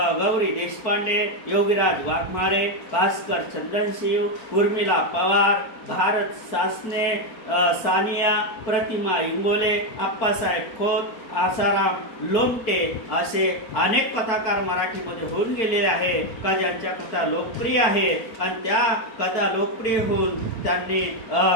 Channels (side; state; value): right; late; 4.6 ms